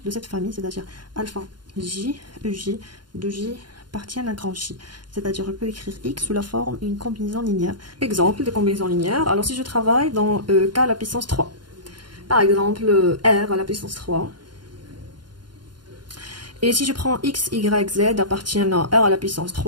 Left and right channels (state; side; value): late; left; 0.71 ms